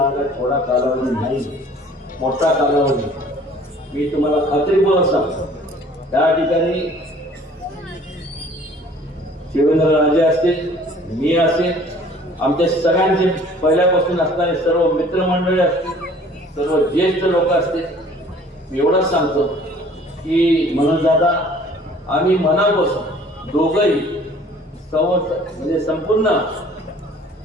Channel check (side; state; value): both; normal; correlation 0.52